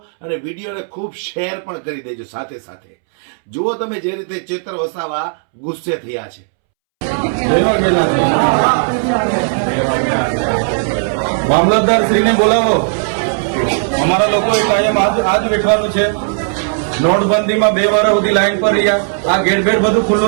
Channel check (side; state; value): left; silent; 68 dB below the other